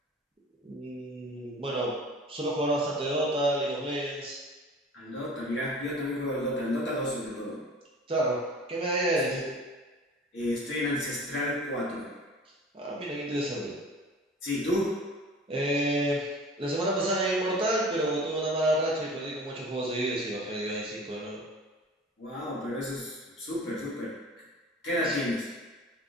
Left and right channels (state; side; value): normal; both; correlation 0.42